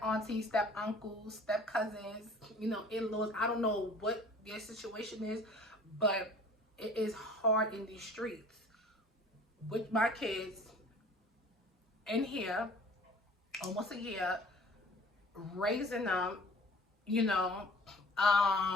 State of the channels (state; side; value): normal; both; correlation 0.49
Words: aunties, step uncles, step cousins, in-laws. I don't know what your situation is, but it is hard in these streets. with my kids in here almost a year, raising them, you know,